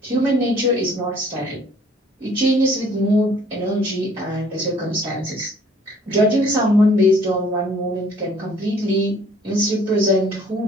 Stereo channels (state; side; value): normal; both; correlation 0.57